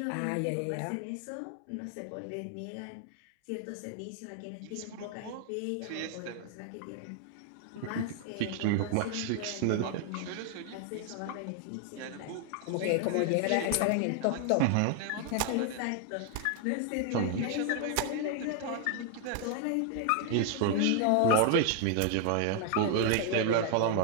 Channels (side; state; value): both; different; correlation 0.00